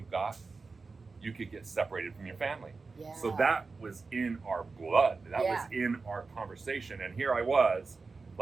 got, you could get separated from your family. Yeah. So that was in our blood. That was in our conversation. And here I was,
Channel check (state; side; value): quieter; left; 4.2 dB